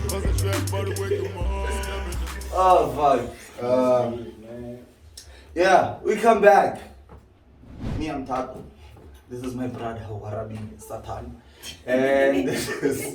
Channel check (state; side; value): identical; both; correlation 1.00